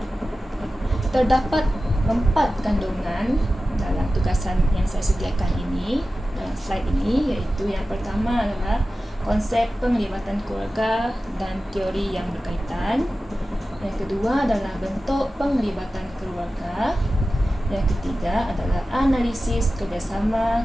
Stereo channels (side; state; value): both; normal; correlation 0.95